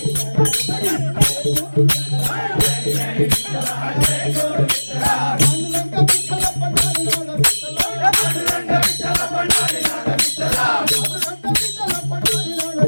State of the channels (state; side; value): inverted; both; correlation -1.00